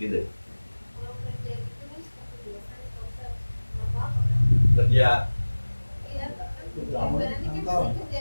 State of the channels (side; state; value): both; inverted; correlation -1.00